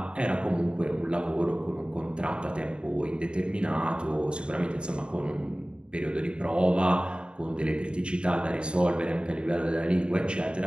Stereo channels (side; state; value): left; late; 0.053 ms